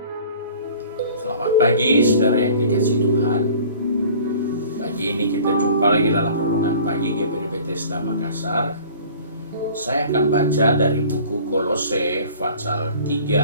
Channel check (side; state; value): both; inverted; correlation -0.47